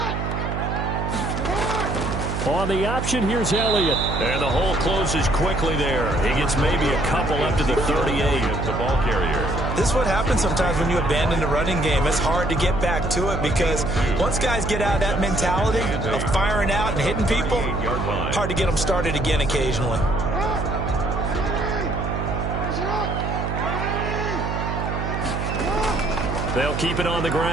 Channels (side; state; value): right; noise; hum, 3 dB below the sound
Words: On the option, here's Elliott. And the hole closes quickly there. He gets maybe a couple up to the 38. The ball carrier. This is what happens sometimes when you abandon the running game. It's hard to get back to it because once guys get out of that mentality of firing out and hitting people, hard to get them started again occasionally. They'll keep it on the